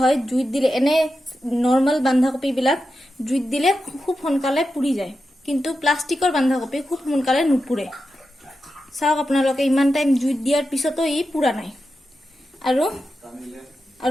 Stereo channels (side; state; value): both; normal; correlation 0.90